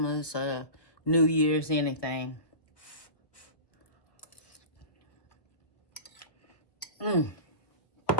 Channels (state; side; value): late; right; 1.2 ms